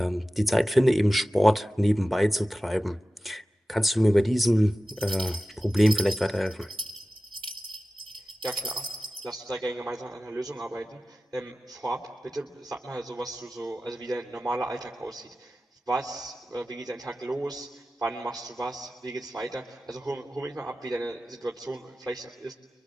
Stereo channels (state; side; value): normal; both; correlation 0.94